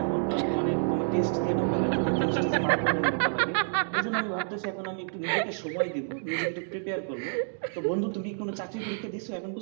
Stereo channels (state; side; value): silent; left; digital silence